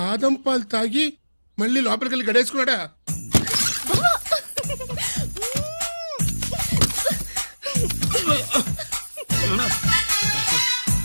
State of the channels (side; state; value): both; inverted; correlation -1.00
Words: పాలు తాగి మళ్ళీ లోపలికెళ్ళి గడేసుకున్నాడా?